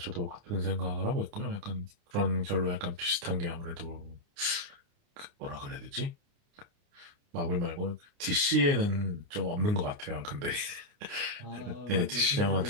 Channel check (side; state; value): left; late; 29 ms